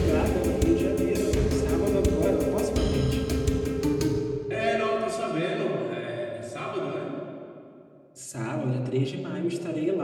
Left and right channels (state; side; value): identical; both; correlation 1.00